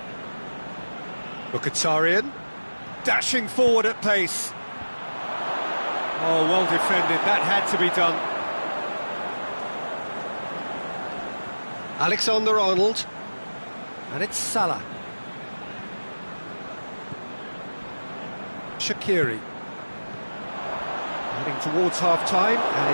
Mkhitaryan. Dashing forward at pace. Oh, well defended. That had to be done. Alexander-Arnold. And it's Salah. Shaqiri. Heading towards half-time, and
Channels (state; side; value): inverted; both; correlation -1.00